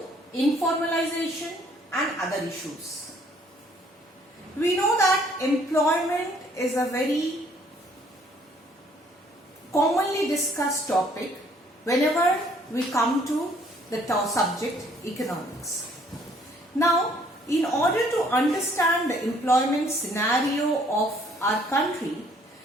informalization and other issues. We know that employment is a very commonly discussed topic whenever we come to the subject economics. Now, in order to understand the employment scenario of our country,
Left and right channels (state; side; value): normal; both; correlation 0.62